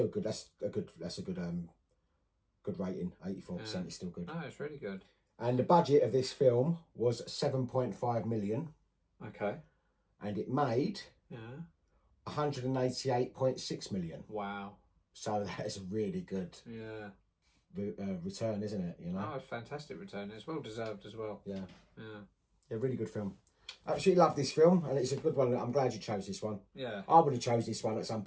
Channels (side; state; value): both; identical; correlation 1.00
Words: good. That's a good good rating. 84% is still good. No, it's really good. And the budget of this film was 7.5 million. Okay. And it made 188.6 million. Wow. So that is a really good return, isn't it? You know. Oh, a fantastic return. It's well deserved as well. Yeah. Yeah. Yeah, really good film. Absolutely love this film, and it's a good one. I'm glad you chose this one. Yeah. I would have chose this one at some